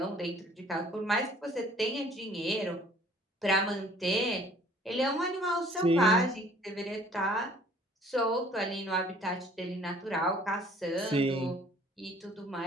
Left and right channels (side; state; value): both; normal; correlation 0.55